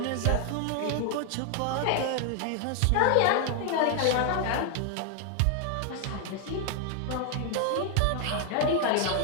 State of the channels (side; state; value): both; different; correlation 0.00